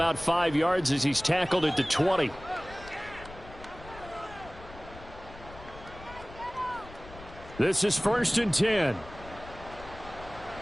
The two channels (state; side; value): noise; left; rumble, 17 dB below the sound